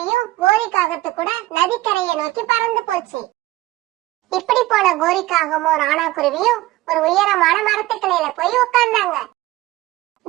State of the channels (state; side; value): quieter; left; 17.7 dB